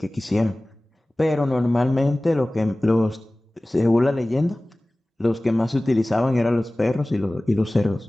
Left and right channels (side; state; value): both; normal; correlation 0.98